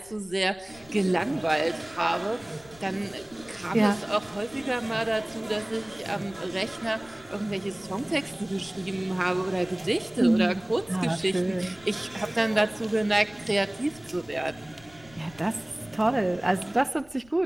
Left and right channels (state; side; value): noise; left; rumble, 24 dB below the sound